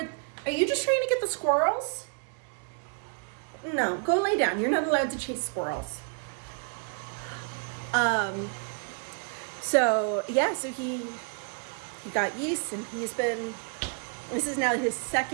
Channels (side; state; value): left; quieter; 37.6 dB